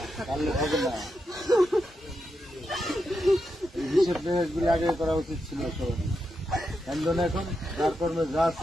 হবে না হিসেব মেহেজগুলি আগে করা উচিত ছিল সবাই কেন এখন যার কর্মে যা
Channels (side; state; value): both; normal; correlation 0.86